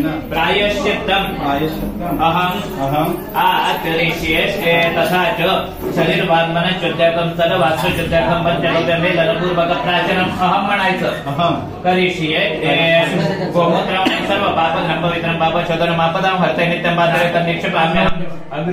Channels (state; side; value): identical; both; correlation 1.00